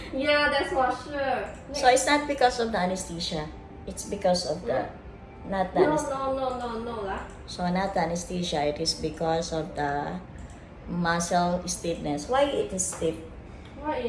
Yeah, that's for sure. So it's not because of the anesthesia. It's because of the not the anesthesia. No lah. So not the anesthesia. It is because of the muscle stiffness. Why it is stiff? Why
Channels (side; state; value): both; identical; correlation 1.00